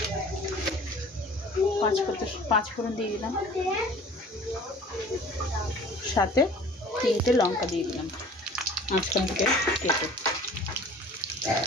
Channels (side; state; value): both; normal; correlation 0.46